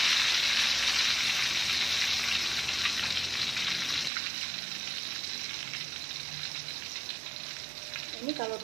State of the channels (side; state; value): left; drops out; at 4.1 s